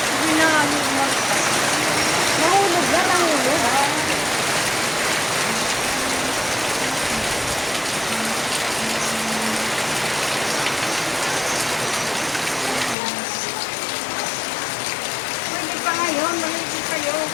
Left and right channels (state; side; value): drops out; right; at 13.0 s